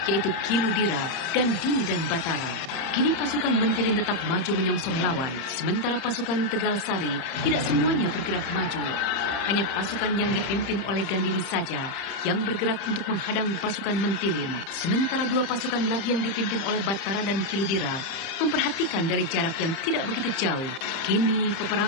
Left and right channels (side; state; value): right; late; 30 ms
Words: yaitu Kiludira, Gandini, dan Batara. Kini pasukan Mentilin tetap maju menyongsong lawan, sementara pasukan Tegal Sari tidak semuanya bergerak maju. Hanya pasukan yang dipimpin oleh Gandini saja yang bergerak untuk menghadang pasukan Mentilin. Sementara 2 pasukan lagi yang dipimpin oleh Batara dan Kiludira memperhatikan dari jarak yang tidak begitu jauh. Kini